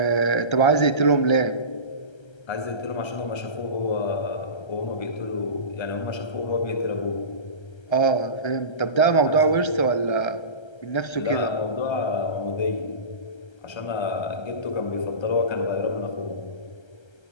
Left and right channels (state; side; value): late; right; 1.3 ms